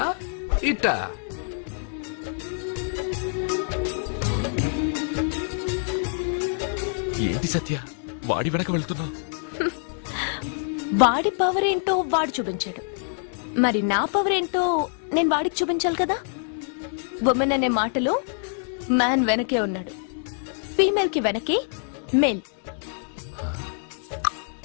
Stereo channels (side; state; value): right; silent; digital silence